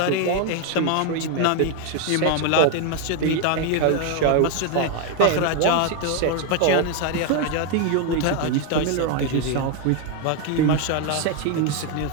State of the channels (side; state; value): both; different; correlation 0.01